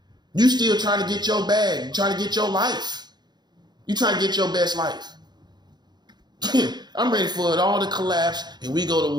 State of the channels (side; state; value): left; late; 0.21 ms